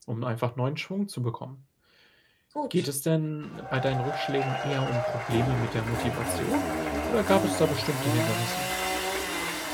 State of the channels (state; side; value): identical; both; correlation 1.00